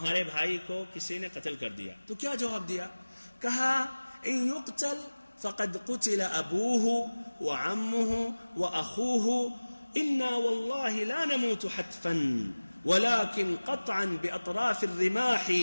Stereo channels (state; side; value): inverted; both; correlation -1.00